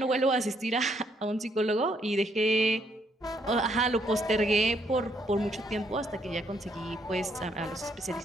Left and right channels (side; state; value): both; normal; correlation 0.72